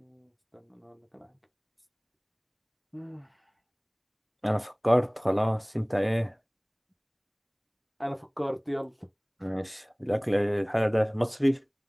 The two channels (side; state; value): both; identical; correlation 1.00